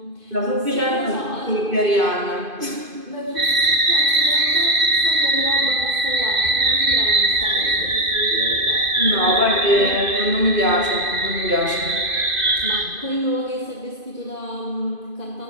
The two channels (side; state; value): left; late; 2.5 ms